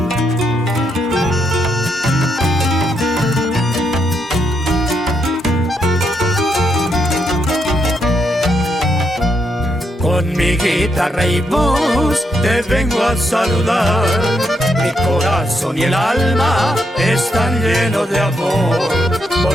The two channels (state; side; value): normal; both; correlation 0.79